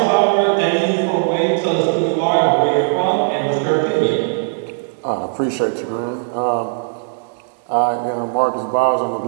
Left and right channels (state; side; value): silent; left; 67 dB below the other